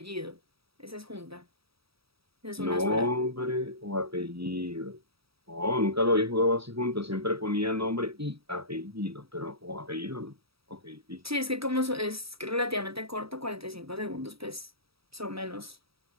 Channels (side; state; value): left; late; 0.76 ms